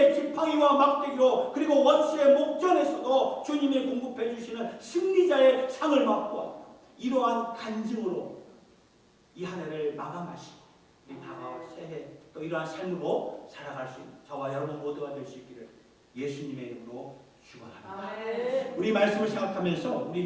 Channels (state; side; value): identical; both; correlation 1.00